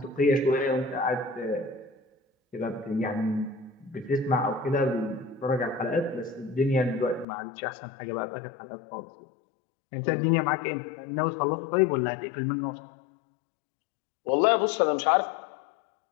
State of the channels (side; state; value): right; drops out; at 7.2 s